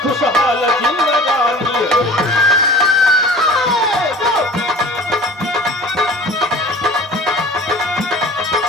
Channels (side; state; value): both; normal; correlation 0.42